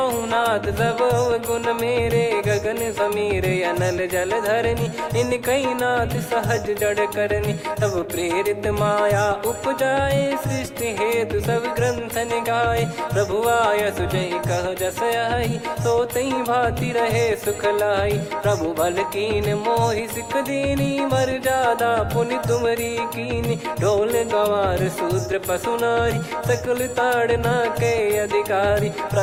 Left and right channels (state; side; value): identical; both; correlation 1.00